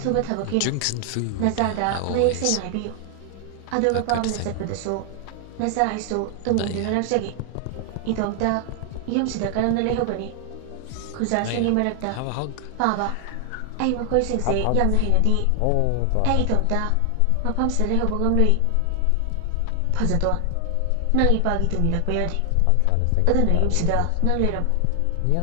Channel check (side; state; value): both; different; correlation 0.00